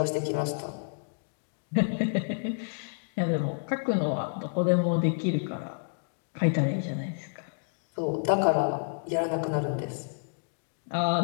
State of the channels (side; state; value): right; silent; digital silence